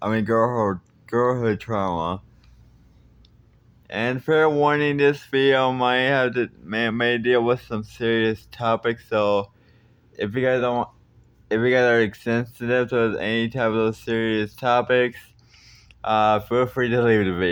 Trauma." And fair warning, this video may deal with some serious topics. So if you guys are sensitive to any type of those serious topics, feel free to leave the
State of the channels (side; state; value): both; identical; correlation 1.00